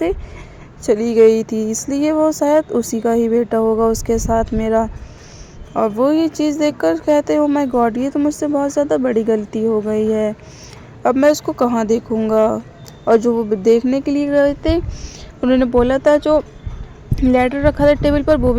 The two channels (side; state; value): both; identical; correlation 1.00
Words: चली गई थी, इसलिए वो शायद उसी का ही बेटा होगा उसके साथ मेरा। और वो ये चीज़ देखकर कहते हैं ओ माय गॉड, ये तो मुझसे बहुत ज़्यादा बड़ी गलती हो गई है, अब मैं उसको कहाँ देखूँगा। और जो वो देखने के लिए गए थे उन्होंने बोला था जो लेटर रखा था टेबल पर वो